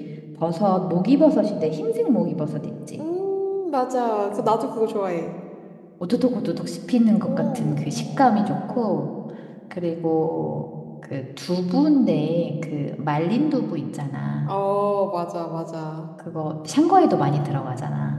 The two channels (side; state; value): both; identical; correlation 1.00